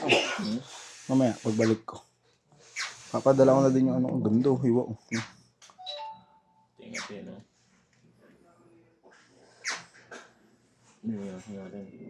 Mamaya, pagbalik ko. Papadala ko na din yung ano, ang ganda, hiwa ko. Tingnan natin, no?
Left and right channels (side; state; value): both; identical; correlation 1.00